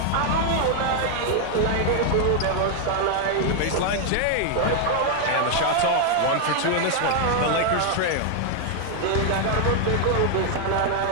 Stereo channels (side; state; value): both; different; correlation 0.00